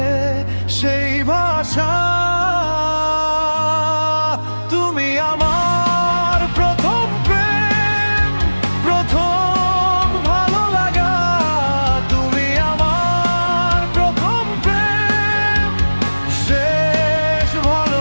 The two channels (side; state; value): both; inverted; correlation -1.00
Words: সেই ভাষা। তুমি আমার প্রথম প্রেম, প্রথম ভালো লাগা। তুমি আমার প্রথম প্রেম, শেষ